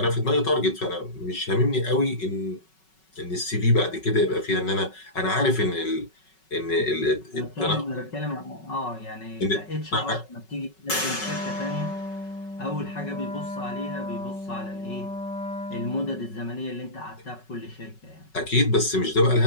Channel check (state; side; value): late; right; 5.3 ms